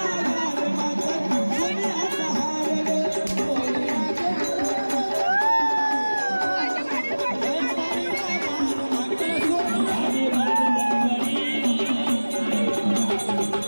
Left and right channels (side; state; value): both; inverted; correlation -1.00